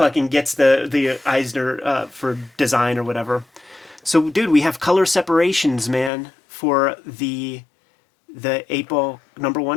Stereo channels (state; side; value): drops out; right; at 6.1 s